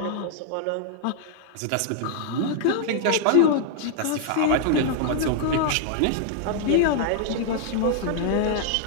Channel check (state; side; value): different; both; correlation 0.00